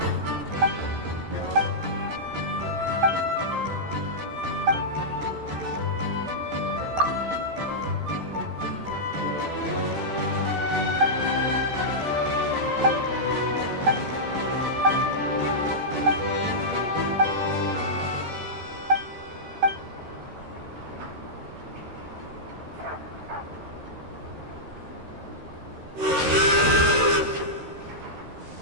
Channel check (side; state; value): left; late; 13 ms